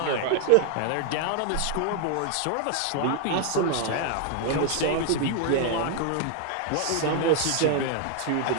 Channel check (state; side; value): different; both; correlation 0.00